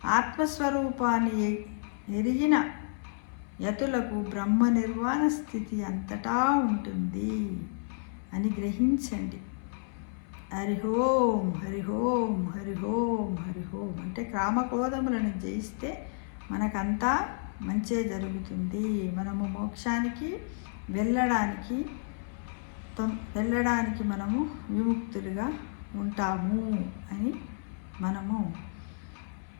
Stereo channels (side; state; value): right; silent; 57 dB below the other